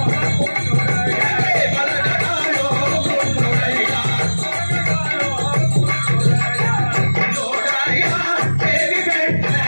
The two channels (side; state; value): both; inverted; correlation -1.00